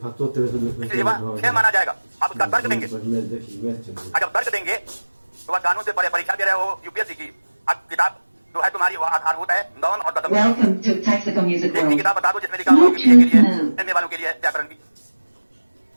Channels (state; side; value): inverted; both; correlation -1.00